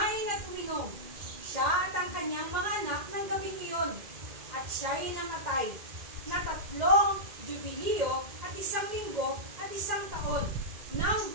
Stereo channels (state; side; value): late; left; 2.1 ms